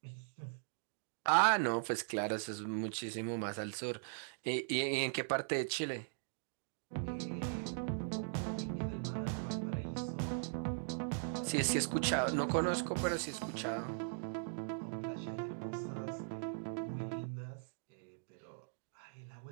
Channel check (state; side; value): silent; left; digital silence